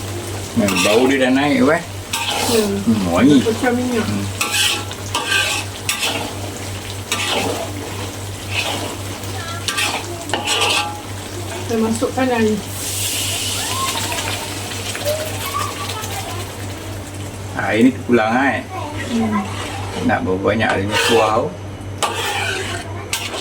Bau dia dah naik wangi. Pecah minyak. Kita masukkan air. Air ni terpulang Nak berapa banyak airnya kuah.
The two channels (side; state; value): both; identical; correlation 1.00